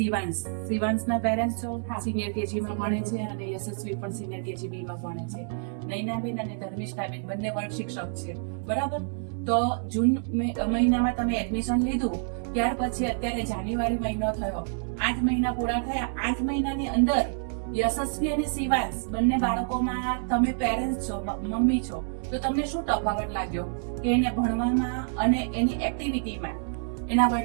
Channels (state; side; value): silent; left; 60 dB below the other